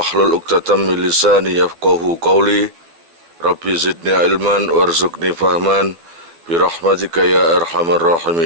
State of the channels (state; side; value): late; left; 12 ms